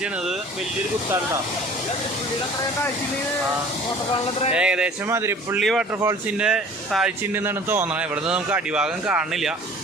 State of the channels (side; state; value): both; normal; correlation 0.47